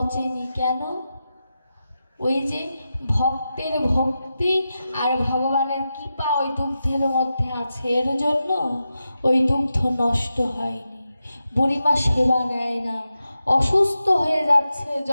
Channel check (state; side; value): inverted; both; correlation -0.90